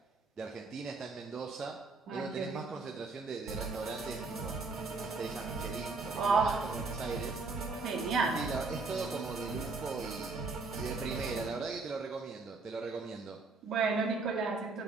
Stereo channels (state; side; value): quieter; left; 3.9 dB